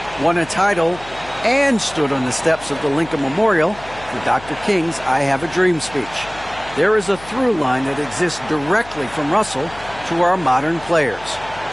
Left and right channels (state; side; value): noise; left; hum, 19 dB below the sound